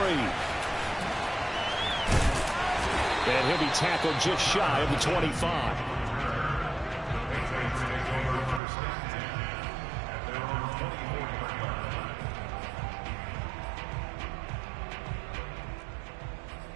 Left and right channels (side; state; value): left; drops out; at 8.6 s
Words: And he'll be tackled just shy of the 25.